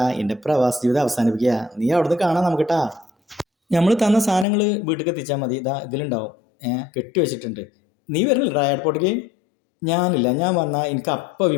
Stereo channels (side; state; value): right; drops out; at 4.5 s